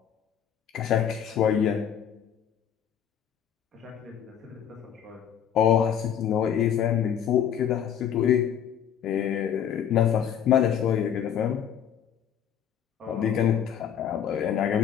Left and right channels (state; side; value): quieter; right; 9.0 dB